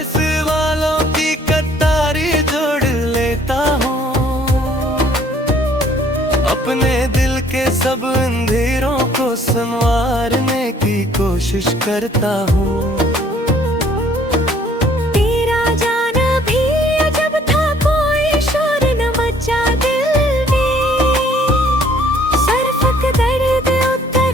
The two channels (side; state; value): both; normal; correlation 0.59